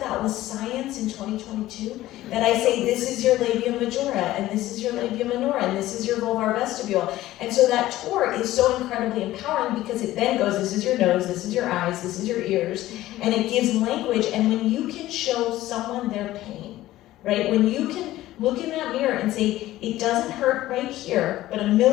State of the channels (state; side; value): quieter; right; 15.5 dB